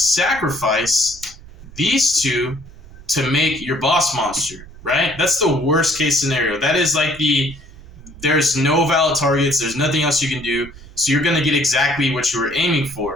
these 2 to make your boss monster, right? That's the worst case scenario. That is like there's no valid targets, there's nothing else you can do, so you're going to get exactly what you were aiming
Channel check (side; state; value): right; noise; rumble, 19 dB below the sound